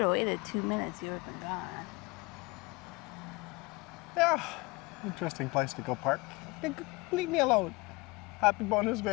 have waited 2 minutes, you would have been gone. Yeah, interesting place to go park. Leave me alone. Happy bonus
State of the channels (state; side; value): quieter; right; 24.9 dB